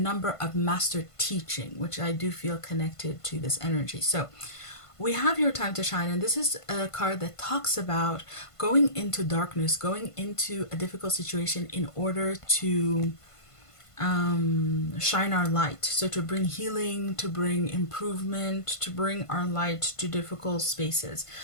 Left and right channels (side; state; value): right; late; 1.5 ms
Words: of master teaching, which I do feel connected to this energy. So we have your time to shine. And this is a card that talks about going into darkness, going into a difficult situation in order to shine our light. So to bring healing, to bring improvement, to bring our light to difficult spaces.